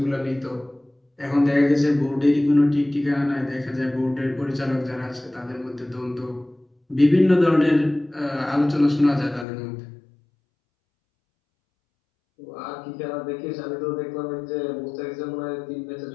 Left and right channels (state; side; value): drops out; right; at 9.5 s